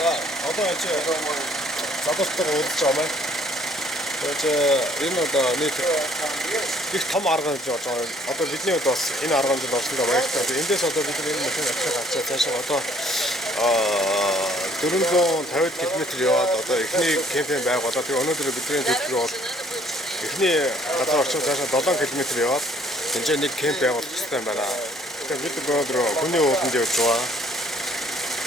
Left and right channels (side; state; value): both; normal; correlation 0.61